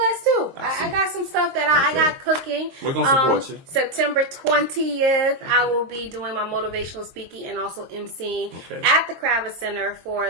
too. I got some stuff that I got cooking. We're gonna support you. September 20th, I will be doing my motivational speaking and also emceeing at the Kravis Center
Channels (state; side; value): late; left; 22 ms